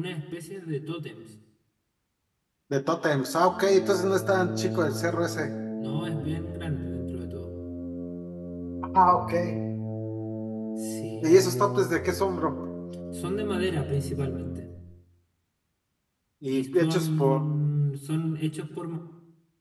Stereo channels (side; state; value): both; identical; correlation 1.00